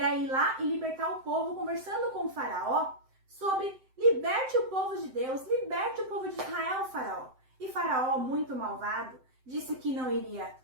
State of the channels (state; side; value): late; left; 7.8 ms